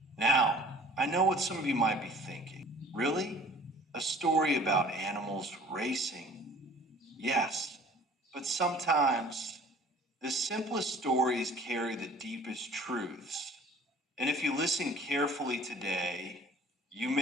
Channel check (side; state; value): both; normal; correlation 0.49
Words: Now, I know what some of you might be thinking. Really? A story about animals racing? Yes, but sometimes the simplest stories carry the deepest truths. And if you listen carefully today, you